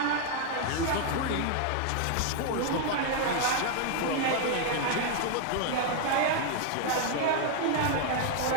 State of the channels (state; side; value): different; both; correlation 0.00